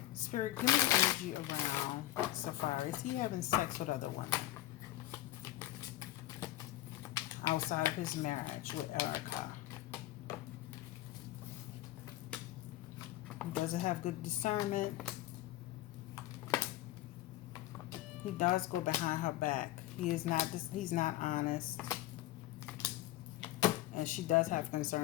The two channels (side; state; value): right; quieter; 15.1 dB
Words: Spirit, give me the energy around Safaree. Is he having sex with other women? Outside of his marriage with Erica. He doesn't have good discernment. He does go behind her back. He's not honest. And she does have